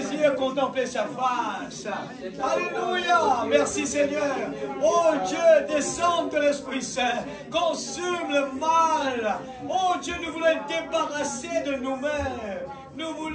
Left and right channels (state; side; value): identical; both; correlation 1.00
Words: contempler sa face. Alléluia. Merci Seigneur. Oh Dieu, descends de l'Esprit Saint. Consume le mal. Oh Dieu, nous voulons être débarrassés de nous-mêmes. Nous